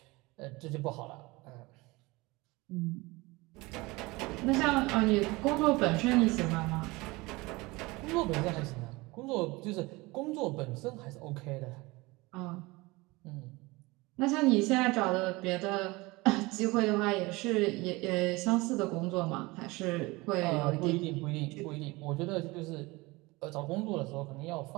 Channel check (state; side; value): quieter; left; 22.8 dB